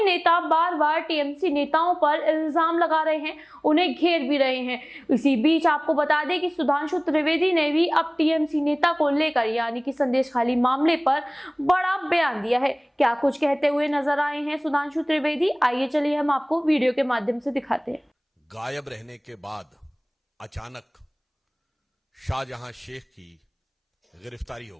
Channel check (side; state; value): both; identical; correlation 1.00